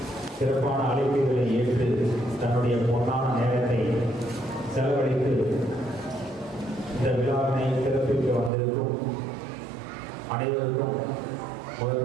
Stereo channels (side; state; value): left; drops out; at 8.5 s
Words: சிறப்பான அழைப்புகளை ஏற்று தன்னுடைய பொன்னான நேரத்தை செலவழித்து இந்த விழாவினை சிறப்பிக்க வந்திருக்கும் அனைவருக்கும்